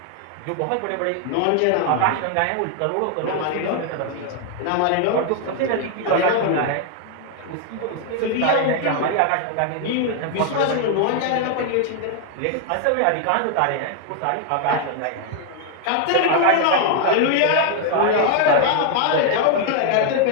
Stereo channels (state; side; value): different; both; correlation 0.00